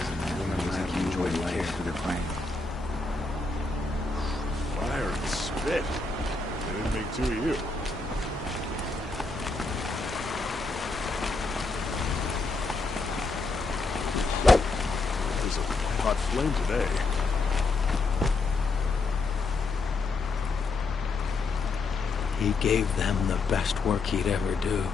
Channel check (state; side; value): quieter; right; 3.7 dB